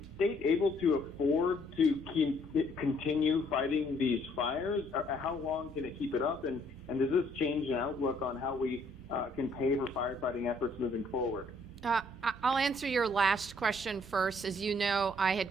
state able to afford to continue fighting these fires? How long can it keep it up? And does this change an outlook on how we can pay for firefighting efforts moving forward? I'll answer your last question first. As you know, I had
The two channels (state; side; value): normal; both; correlation 0.65